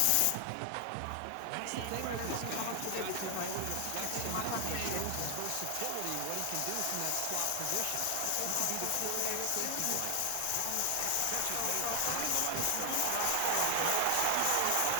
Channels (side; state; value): both; different; correlation 0.00